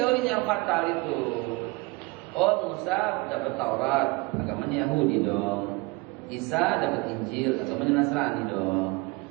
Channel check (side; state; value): left; quieter; 25.0 dB